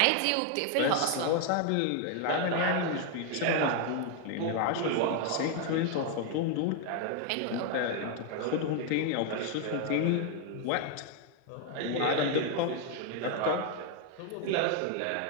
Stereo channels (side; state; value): both; different; correlation 0.00